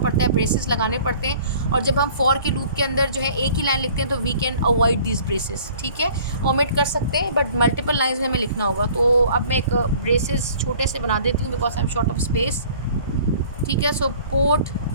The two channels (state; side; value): inverted; both; correlation -0.51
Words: है, ब्रेसेस लगाने पड़ते हैं, और जब हम फॉर के लूप के अंदर जो है एक ही लाइन लिखते हैं तो we can avoid this braces, ठीक है। ओमिट कर सकते हैं, बट मल्टीपल लाइंस में हमें लिखना होगा। तो अब मैं एक ब्रेसेस छोटे से बना देती हूँ because I am short of space, ठीक है। सो पोर्ट